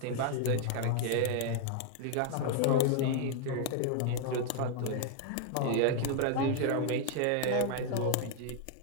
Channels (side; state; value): both; different; correlation 0.00